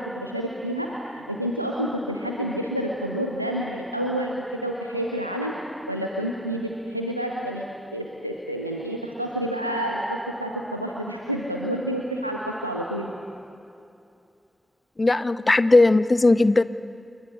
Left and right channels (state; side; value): normal; both; correlation 0.60